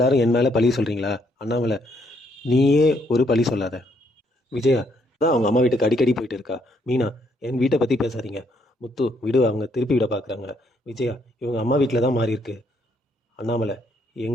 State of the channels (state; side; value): normal; both; correlation 0.71